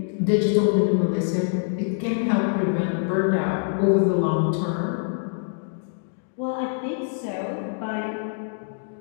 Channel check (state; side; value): silent; right; digital silence